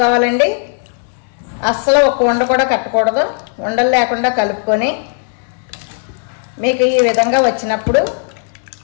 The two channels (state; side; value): silent; right; 63 dB below the other